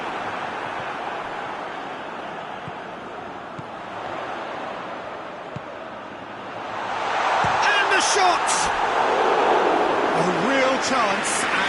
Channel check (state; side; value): identical; both; correlation 1.00